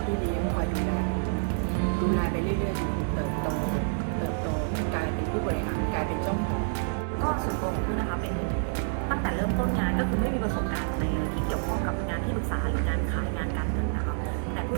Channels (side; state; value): left; silent; 59 dB below the other